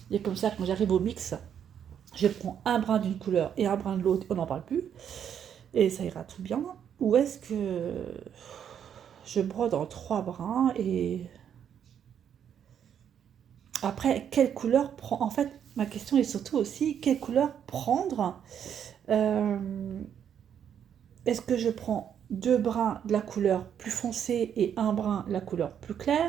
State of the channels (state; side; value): quieter; left; 8.7 dB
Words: Et comme ça, quand j'arrive au mix, je prends un brin d'une couleur et un brin de l'autre, on n'en parle plus. Et ça ira tout bien. Ou est-ce que je brode en 3 brins et après, quelle couleur prendre? En fait, ma question est surtout aussi, quelle couleur prendre? Est-ce que je prends 2 brins de la couleur plus foncée et un brin de la couleur plus